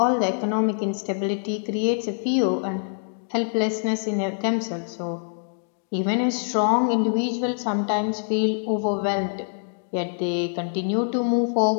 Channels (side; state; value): right; silent; digital silence